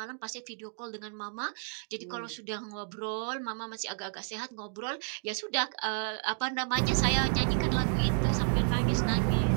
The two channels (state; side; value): silent; left; 57 dB below the other